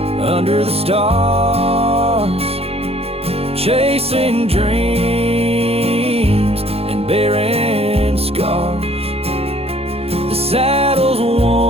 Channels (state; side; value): late; left; 0.29 ms